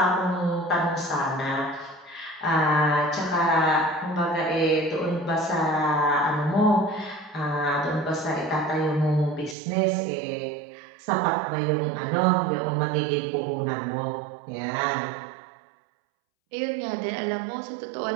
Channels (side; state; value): left; drops out; at 9.6 s